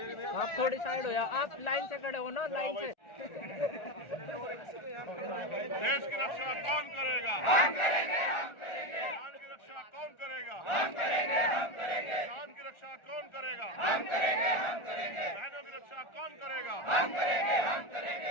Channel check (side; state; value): right; late; 1.4 ms